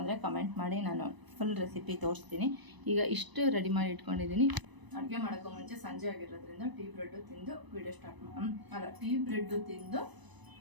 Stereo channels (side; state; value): left; late; 1.0 ms